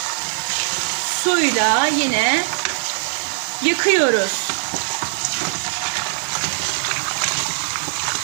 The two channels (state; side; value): silent; left; digital silence